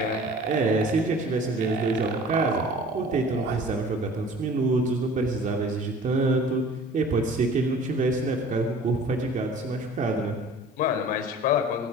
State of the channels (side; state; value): both; normal; correlation 0.46